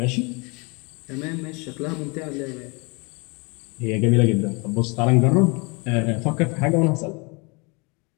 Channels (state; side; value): quieter; right; 30.0 dB